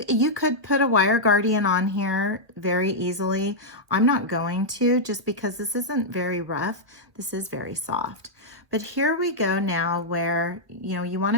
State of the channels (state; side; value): late; left; 1.2 ms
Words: could put a wire guardian on here very easily. I'm not going to, just because this isn't very rough. This is very soft. But here we go now where, you want